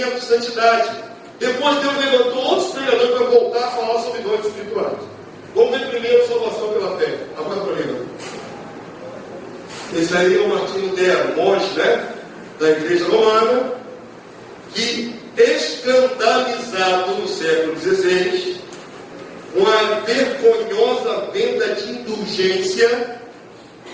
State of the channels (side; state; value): both; identical; correlation 1.00